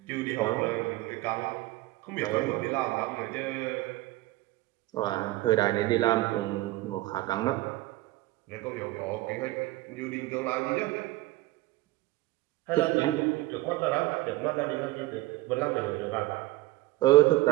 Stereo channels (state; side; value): quieter; left; 18.4 dB